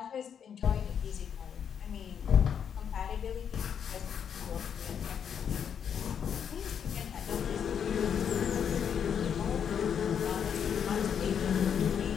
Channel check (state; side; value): quieter; right; 7.9 dB